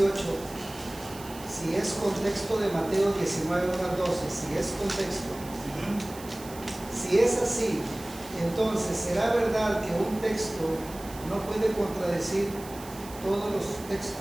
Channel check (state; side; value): noise; right; hiss, 17 dB below the sound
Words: si es contexto de Mateo 19, 1 al 12, si es contexto, si es así, entonces ¿será verdad que un texto no puede contradecir todos los